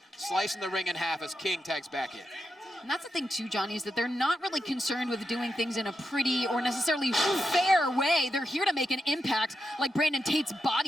slicing the ring in half as King tags back in. And that's the thing too, Johnny, is that they're not really concerned with doing things in a pretty or necessarily fair way. They're here to make an impact like Brandon Tate's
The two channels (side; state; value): both; normal; correlation 0.87